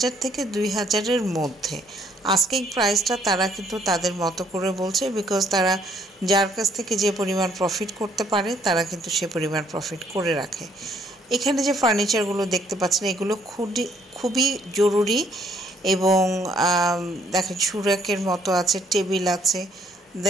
থেকে 2,000-এর মধ্যে। আস্কিং প্রাইসটা তারা কিন্তু তাদের মতো করে বলছে, বিকজ তারা যার কাছ থেকে যে পরিমাণ প্রফিট করতে পারে তারা কিন্তু সে পরিমাণ প্রফিট করে রাখে। এখানে যে ফার্নিচারগুলো দেখতে পাচ্ছেন এগুলো খুবই জরুরি, এবং দেখেন সুরাকের মতো আছে, টেবিল আছে,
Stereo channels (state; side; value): normal; both; correlation 0.65